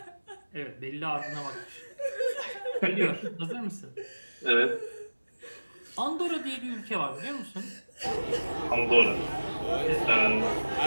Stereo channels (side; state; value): both; inverted; correlation -1.00